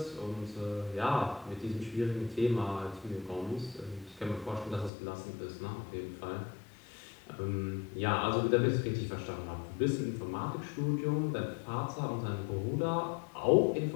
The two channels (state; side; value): drops out; right; at 4.9 s